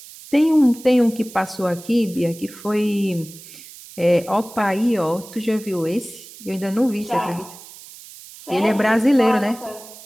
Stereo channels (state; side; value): noise; right; hiss, 18 dB below the sound